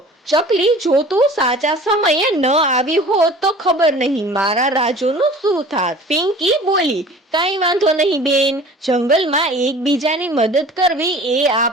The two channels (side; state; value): both; normal; correlation 0.44